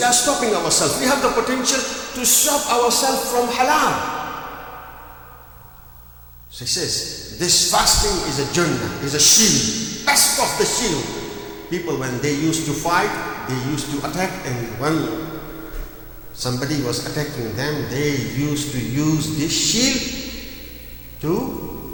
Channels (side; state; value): both; identical; correlation 1.00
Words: are stopping ourselves. We have the potential to stop ourselves from halal. So he says, this fasting is a jannah, is a shield, best of the shield. People, when they used to fight, they used to attack, and when somebody was attacking them, they used to use this shield